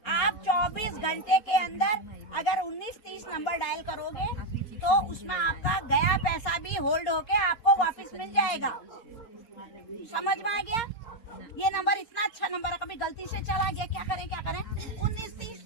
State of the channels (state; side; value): late; right; 4.3 ms